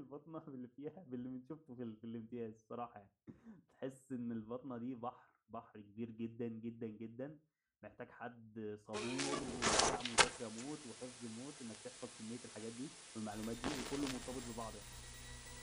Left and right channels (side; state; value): both; identical; correlation 1.00